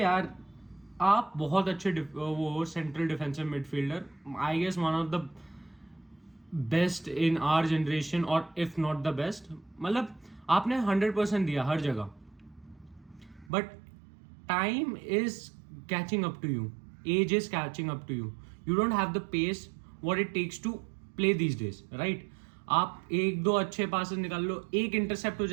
आप बहुत अच्छे वो central defensive midfielder, I guess one of the best in our generation और इफ नॉट द बेस्ट। मतलब आपने 100% दिया हर जगह, but time is catching up to you, age is catching up to you. You don't have the pace what it takes to play these days, right. आप एक दो अच्छे पासेस निकाल लो, एक इंटरसेप्ट हो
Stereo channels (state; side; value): drops out; left; at 13.5 s